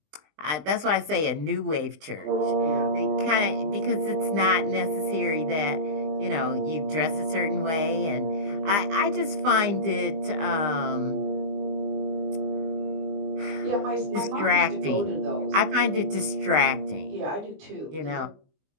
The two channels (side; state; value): left; late; 20 ms